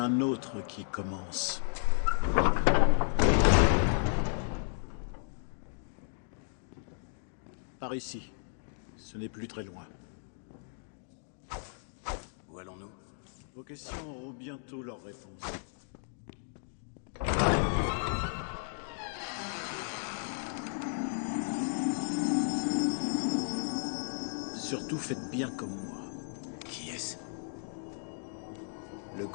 autre qui commence. Par ici. Ce n'est plus très loin. Où allons-nous? Vos questions auront bientôt leur réponse. Surtout faites bien comme moi. Qui est-ce? Le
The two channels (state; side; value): silent; right; digital silence